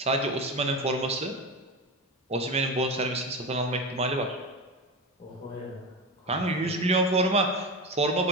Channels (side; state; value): both; normal; correlation 0.23